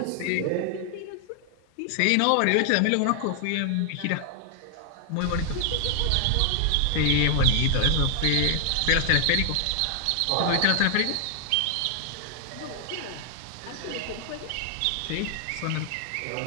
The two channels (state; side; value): different; both; correlation 0.00